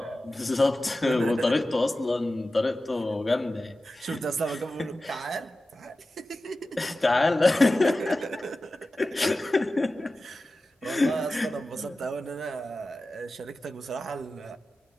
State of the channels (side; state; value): both; normal; correlation 0.95